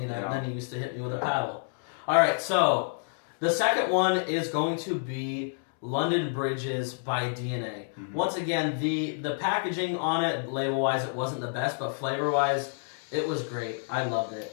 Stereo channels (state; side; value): silent; right; digital silence